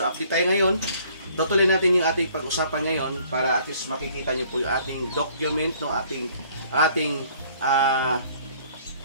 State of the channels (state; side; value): inverted; both; correlation -0.59